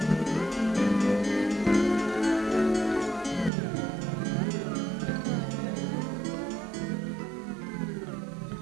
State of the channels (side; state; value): left; drops out; at 3.5 s